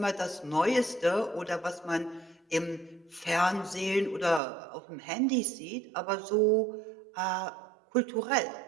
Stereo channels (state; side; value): drops out; left; at 4.4 s